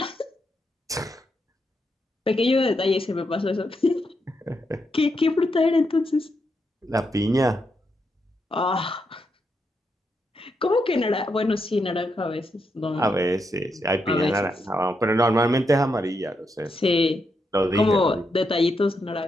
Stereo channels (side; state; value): both; normal; correlation 0.82